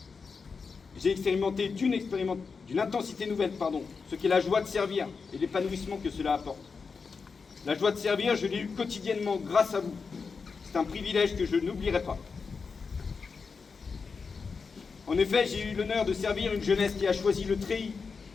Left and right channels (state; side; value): quieter; right; 5.1 dB